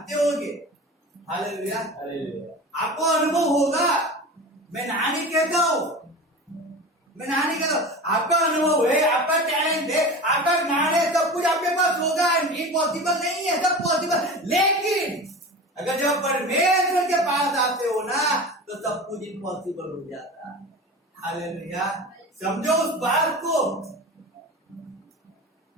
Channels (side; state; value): both; normal; correlation 0.32